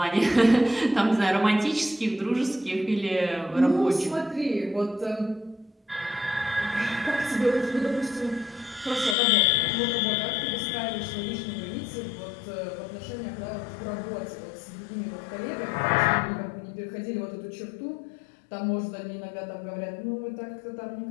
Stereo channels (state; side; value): drops out; right; at 9.2 s